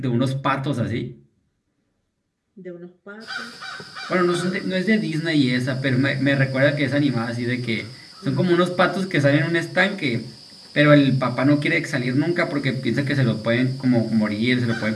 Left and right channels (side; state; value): both; identical; correlation 1.00